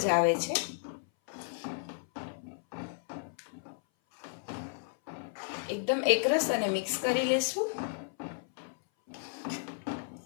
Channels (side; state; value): right; silent; 56 dB below the other